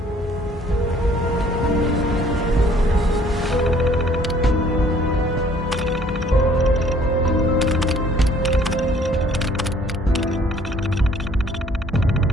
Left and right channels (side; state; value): both; normal; correlation 0.58